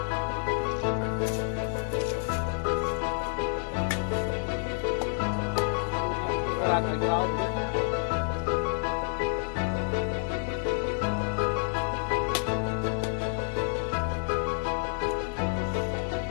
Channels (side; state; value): right; silent; 59 dB below the other